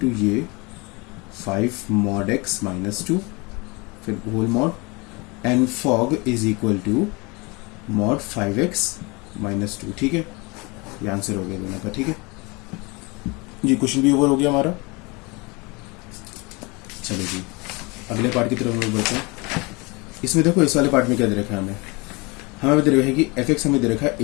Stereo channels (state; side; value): quieter; right; 27.0 dB